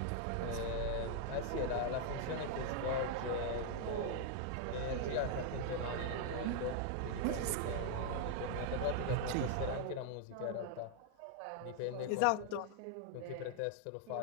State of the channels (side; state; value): both; different; correlation 0.00